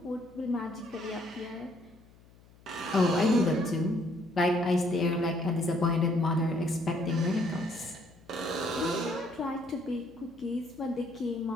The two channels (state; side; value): noise; left; hum, 26 dB below the sound